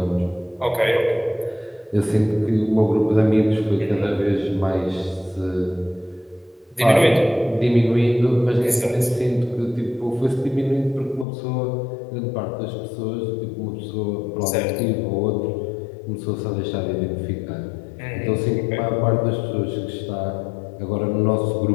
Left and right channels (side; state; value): right; drops out; at 11.2 s